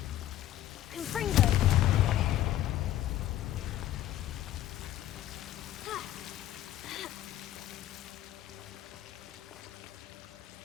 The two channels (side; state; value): right; quieter; 13.2 dB